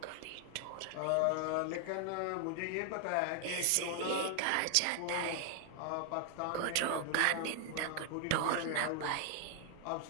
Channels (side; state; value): both; different; correlation 0.00